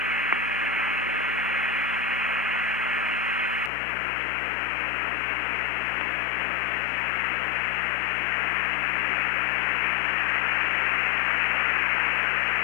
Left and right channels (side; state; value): right; drops out; at 3.7 s